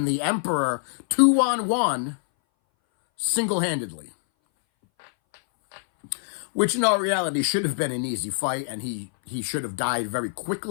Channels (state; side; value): silent; right; 60 dB below the other